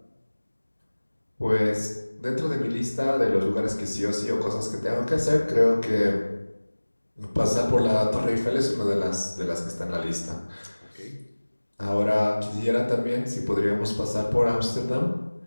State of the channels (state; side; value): inverted; both; correlation -1.00